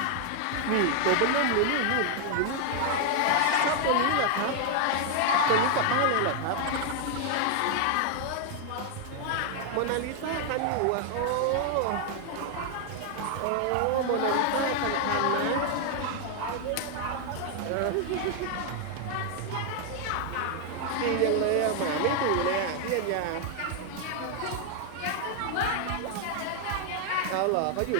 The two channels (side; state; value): both; different; correlation 0.00